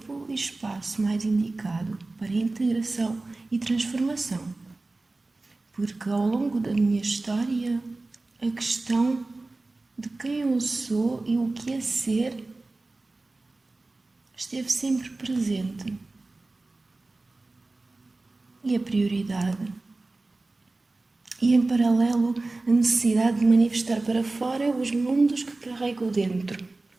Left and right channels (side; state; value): left; quieter; 3.2 dB